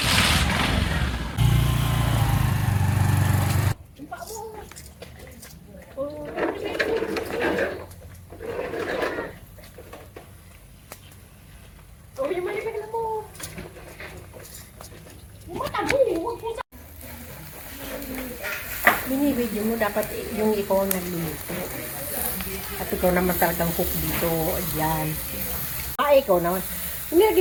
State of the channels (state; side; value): identical; both; correlation 1.00